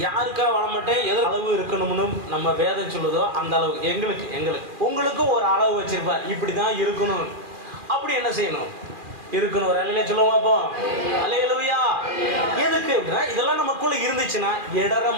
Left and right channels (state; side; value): late; left; 2.4 ms